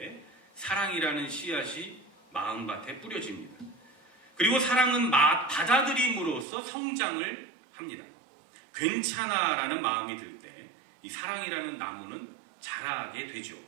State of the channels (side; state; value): left; drops out; at 6.5 s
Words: 사랑이라는 씨앗이 마음밭에 뿌려집니다. 그리고 사랑은 받아들임으로써 성장을 합니다. 괜찮아라는 마음이 들 때 이 사랑이라는 나무는 자라게 되죠.